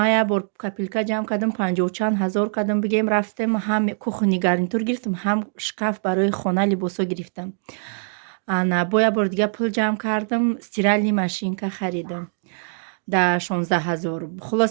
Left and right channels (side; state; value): left; silent; digital silence